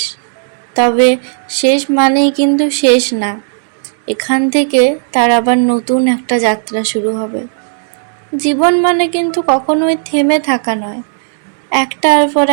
তবে শেষ মানেই কিন্তু শেষ না। এখান থেকে তার আবার নতুন একটা যাত্রা শুরু হবে। জীবন মানে কিন্তু কখনোই থেমে থাকা নয়। একটার পর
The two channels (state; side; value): silent; left; digital silence